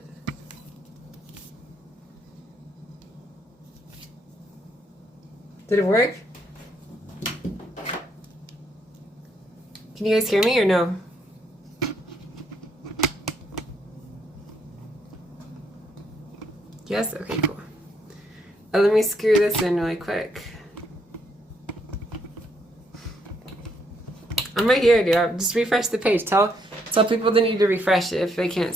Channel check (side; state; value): both; normal; correlation 0.73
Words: Did it work? Can you guys hear me or no? Yes? Okay, cool. Let me screw this in really quick. I'm right here, dude. Just refresh the page. Tell people they need to refresh it if they can't